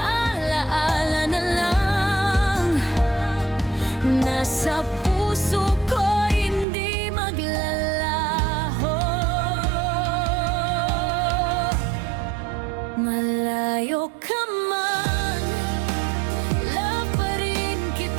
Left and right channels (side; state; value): left; drops out; at 6.7 s